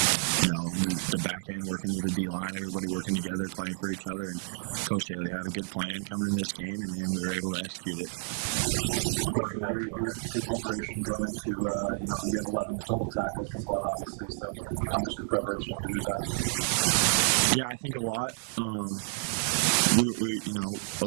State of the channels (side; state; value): left; silent; digital silence